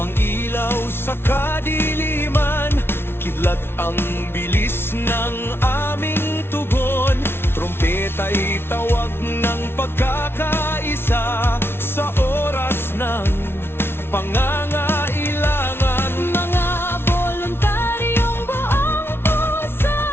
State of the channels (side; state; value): right; late; 0.12 ms